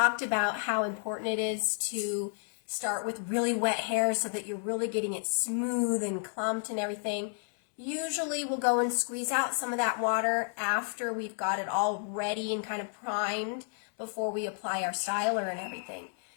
about how important it is to start with really wet hair so that you're really getting it smooth and clumped and everything. Usually we'll go and squeeze out some of that water after we've got it all ready and kind of primed before we apply our styler and everything.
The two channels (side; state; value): right; silent; 57 dB below the other